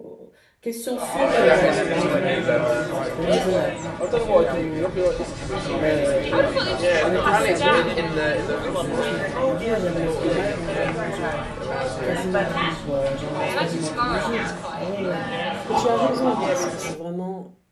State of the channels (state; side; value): identical; both; correlation 1.00